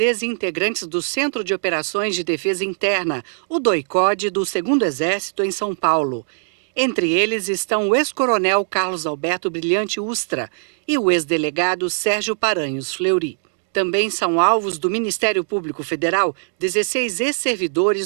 do Centro de Operações de Defesa Interna, o DOI-CODE, do 2º Exército em São Paulo. Entre eles estão o ex-coronel Carlos Alberto Brilhante Ustra e o ex-delegado Sérgio Paranhos Fleury. Também são alvos do Ministério Público Federal 16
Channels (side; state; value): left; silent; digital silence